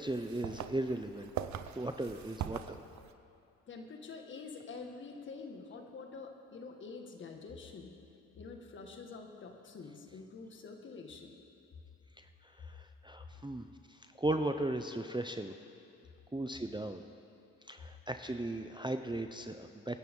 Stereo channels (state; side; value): normal; both; correlation 0.68